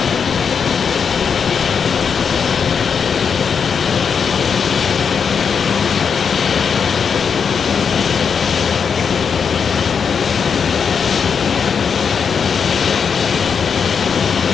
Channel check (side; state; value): right; quieter; 6.4 dB